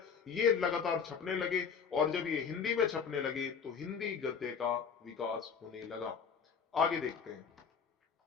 ये लगातार छपने लगे। और जब ये हिंदी में छपने लगे तो हिंदी गद्य का विकास होने लगा। आगे देखते हैं।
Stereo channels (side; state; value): right; quieter; 6.3 dB